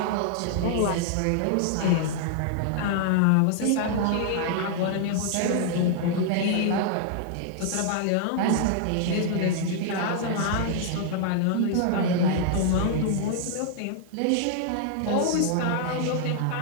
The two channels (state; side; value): different; both; correlation -0.01